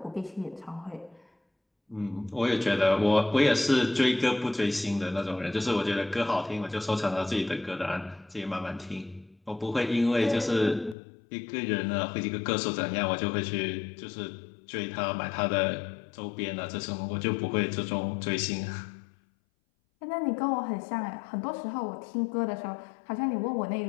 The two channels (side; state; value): right; drops out; at 11.0 s